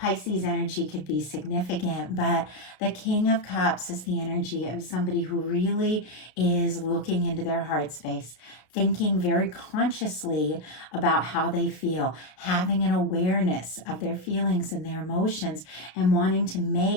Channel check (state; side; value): late; right; 33 ms